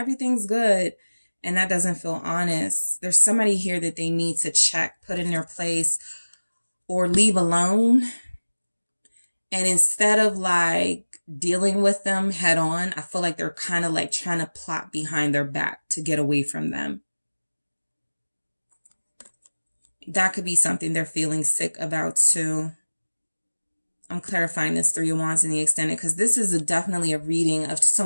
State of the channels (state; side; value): inverted; both; correlation -1.00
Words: good. And that doesn't feel honest. There's somebody here that they need to check, put in their place, or leave alone. And instead of like dealing with them head on, I feel like they're kind of like trying to plot behind their back to get away from them. That could be something they're feeling sick about too. I'm clarifying this 3 of Wands in the extended because this is definitely a reading of